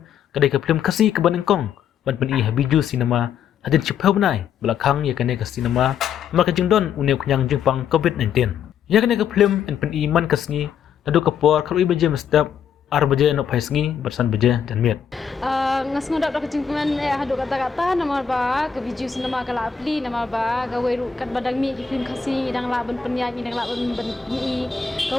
kadai ka film kasi ke ban engkong ban pen I habiju cinema hadin chiphau benai belakang ya kane ka cinema maka jeng don uneu kenyang jeng pang covid-19 ya kene ke film en pen iman kasngi nadu kapor kalau ibaje mestap ar baje no paisngi bersan baje dan miet ngas ngodak dak cingkuman hadu kata-kata nama ba ke biju sinema kala apli nama ba gawe ru kat badang mi di film kasih dang la ben penyanyi dang la ben mi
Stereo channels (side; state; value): right; quieter; 7.5 dB